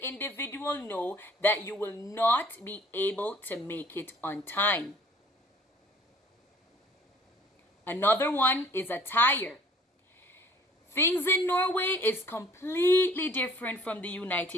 individual know that you will not be able to make it on time. Another one is attire. Things in Norway is completely different from the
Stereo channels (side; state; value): both; normal; correlation 0.55